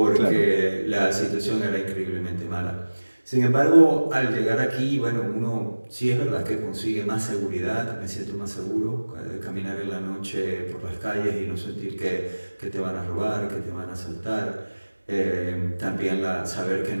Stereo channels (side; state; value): both; inverted; correlation -1.00